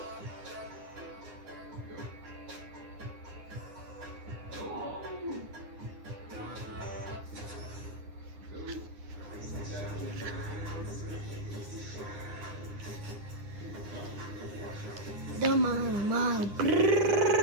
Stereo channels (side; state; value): left; late; 9.9 ms